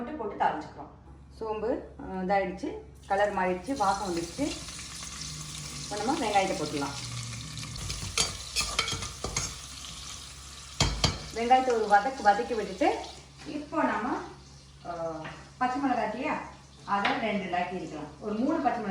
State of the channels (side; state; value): both; identical; correlation 1.00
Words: போட்டு தாளிச்சுக்கிறோம். சோம்பு இதாகிடுச்சு, கலர் மாறிடுச்சு, வாசம் வந்துடுச்சு. இப்போ நம்ம வெங்காயத்தை போட்டுக்கலாம். வெங்காயத்தை ஒரு வதக்கி விட்டுட்டு இப்போ நம்ம பச்சை மிளகாட்டியா அதை 2 லாக்கி இருக்கலாம். ஒரு 3 பச்சை